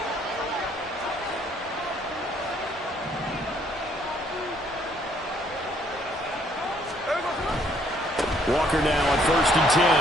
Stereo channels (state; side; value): normal; both; correlation 0.65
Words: Walker now on 1st and 10.